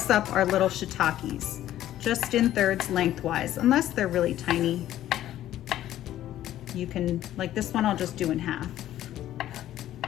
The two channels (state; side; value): quieter; right; 12.8 dB